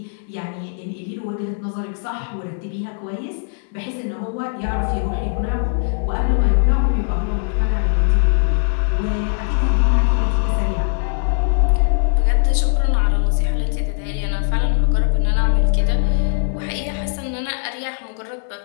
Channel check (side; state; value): right; silent; digital silence